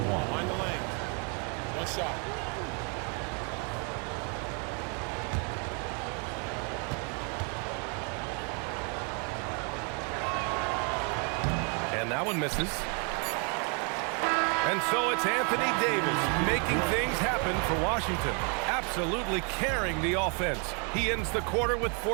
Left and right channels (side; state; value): left; quieter; 37.1 dB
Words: Mind the lane. One shot. And that one misses. And so it's Anthony Davis making things happen for Washington. Absolutely carrying the offense. He ends the quarter with